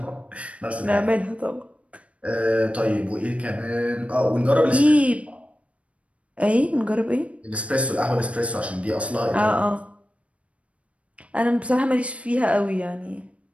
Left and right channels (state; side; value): late; left; 0.063 ms